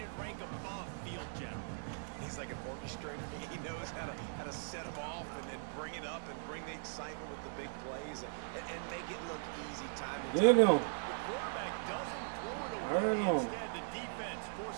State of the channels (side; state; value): left; silent; 52 dB below the other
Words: rank above field general. He's like an orchestrator. He knows how to set them off and then bring it up and bring the excitement with the big plays and make it look easy time and Get him! The quarterback doesn't throw it away. Hurt him. Instead, the defense